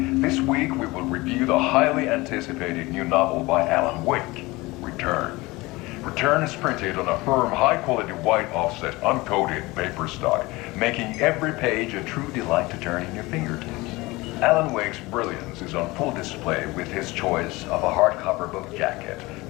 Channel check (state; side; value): quieter; right; 21.7 dB